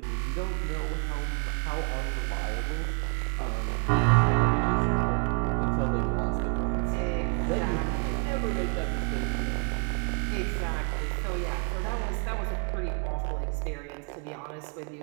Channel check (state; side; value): quieter; left; 34.6 dB